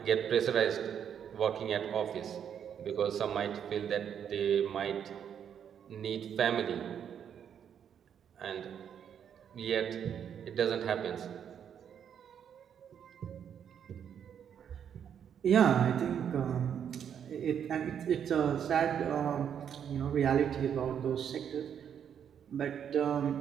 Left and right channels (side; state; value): left; quieter; 8.5 dB